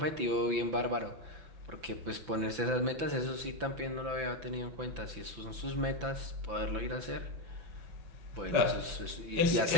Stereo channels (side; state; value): left; late; 5.9 ms